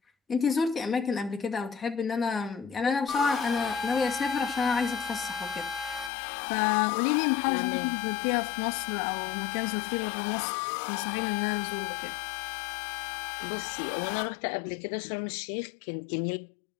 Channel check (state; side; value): drops out; right; at 6.1 s